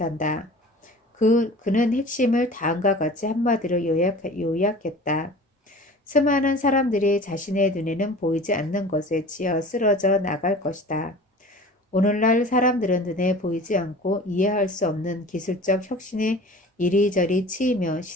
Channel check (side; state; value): both; normal; correlation 0.41